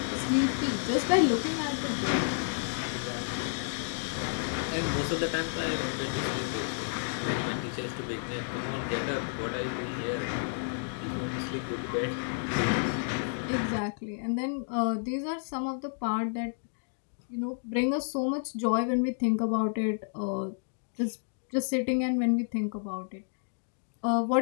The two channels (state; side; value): silent; right; digital silence